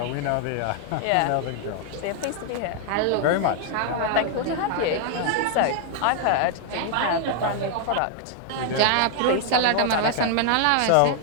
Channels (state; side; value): different; both; correlation 0.00